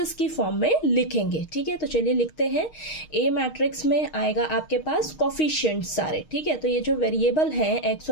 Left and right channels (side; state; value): right; late; 6.4 ms